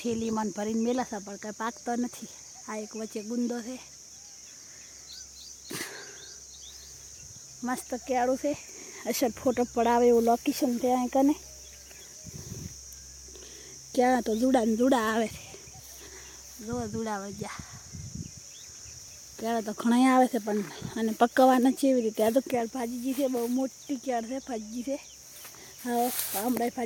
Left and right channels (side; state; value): both; identical; correlation 1.00